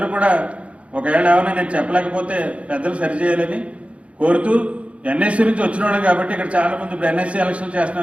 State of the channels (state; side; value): late; left; 0.063 ms